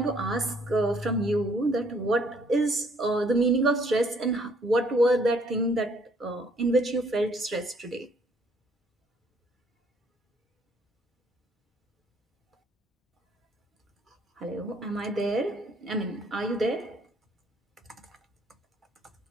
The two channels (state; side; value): normal; both; correlation 0.64